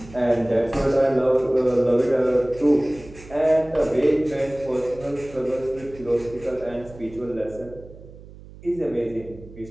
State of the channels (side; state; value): right; noise; hum, 18 dB below the sound